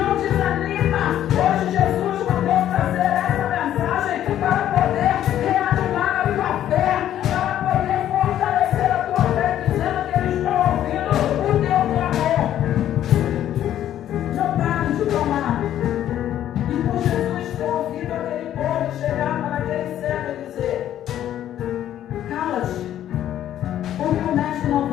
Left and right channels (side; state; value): right; quieter; 11.5 dB